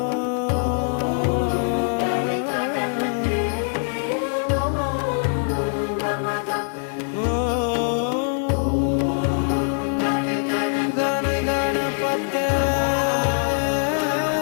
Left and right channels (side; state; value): right; silent; 64 dB below the other